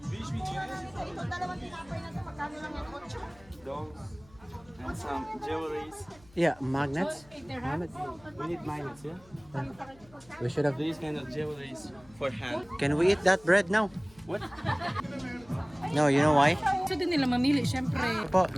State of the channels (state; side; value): noise; left; hum, 26 dB below the sound